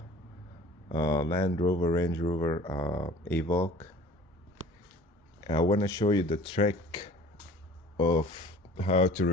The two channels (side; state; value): both; normal; correlation 0.46